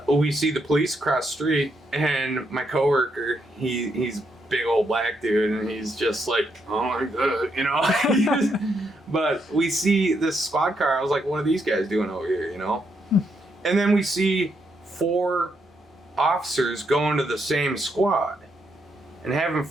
we see the police across the street, and my coworker, he's a big old black dude, and he's just like, oh my god, But we see this squad car. I was like, what are these guys doing over here, And then we see 4 officers going to the same squad. And having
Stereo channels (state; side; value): normal; both; correlation 0.78